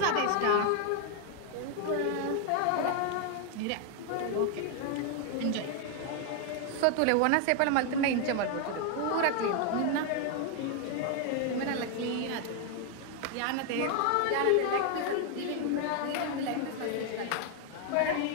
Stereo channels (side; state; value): both; different; correlation 0.01